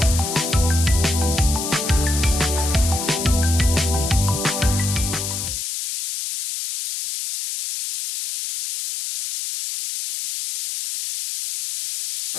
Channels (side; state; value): left; noise; hiss, 4 dB below the sound